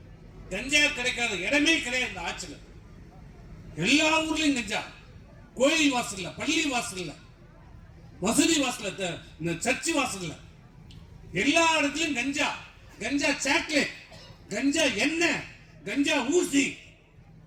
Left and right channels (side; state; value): both; identical; correlation 1.00